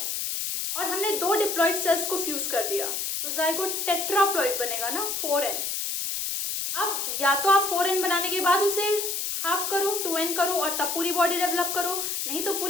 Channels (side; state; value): left; noise; hiss, 2 dB below the sound